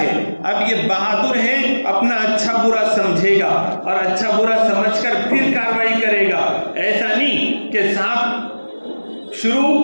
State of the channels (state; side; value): inverted; both; correlation -1.00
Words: اب یہ بہادر ہے، اپنا اچھا برا سمجھے گا اور اچھا برا سمجھ کر پھر کارروائی کرے گا۔ ایسا نہیں کہ صاحب